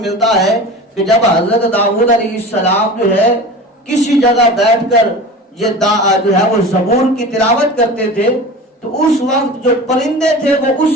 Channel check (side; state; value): both; normal; correlation 0.34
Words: ہے کہ جب حضرت داؤد علیہ السلام جو ہے کسی جگہ بیٹھ کر یہ جو ہے وہ زبور کی تلاوت کرتے تھے تو اس وقت جو پرندے تھے وہ